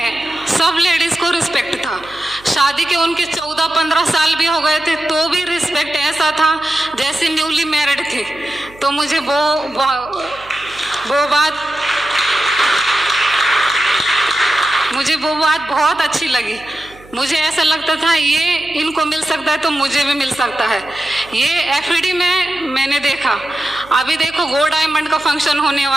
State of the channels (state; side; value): noise; right; hum, 23 dB below the sound